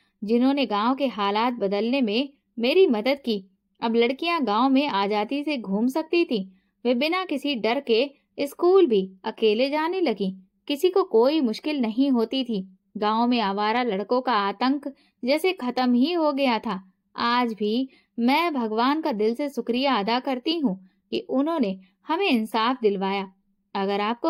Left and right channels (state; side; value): identical; both; correlation 1.00